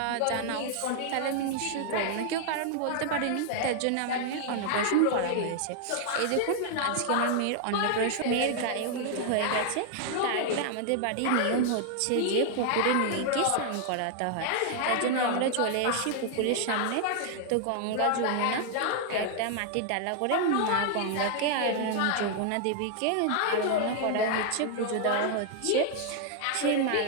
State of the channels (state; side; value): different; both; correlation 0.00